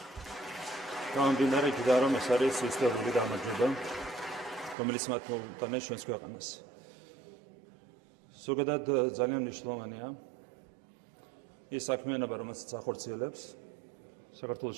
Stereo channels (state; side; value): drops out; left; at 4.8 s